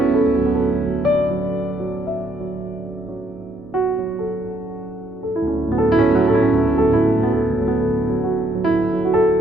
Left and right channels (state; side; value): normal; both; correlation 0.72